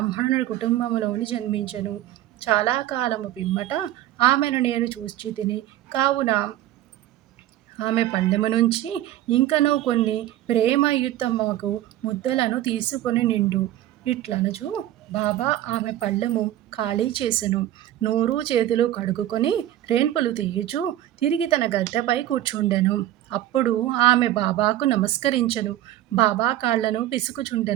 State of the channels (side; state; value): left; quieter; 13.6 dB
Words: కుటుంబములోని జన్మించెను. చాలా కాలము పిమ్మట ఆమెను నేను చూచితిని. కావున ఆమె పళ్ళెము నుంచి ఇంకనూ కొన్ని ప్రేమయుతమగు ముద్దలను తీసుకొని నిండు. ఇట్లనుచు బాబా ఆమె పళ్ళెము ఖాళీ చేసెను. నోరు చేతులు కడుగుకొని రేన్పులు తీయుచు తిరిగి తన గద్దెపై కూర్చుండెను. అప్పుడు ఆమె బాబాకు నమస్కరించెను. బాబా కాళ్లను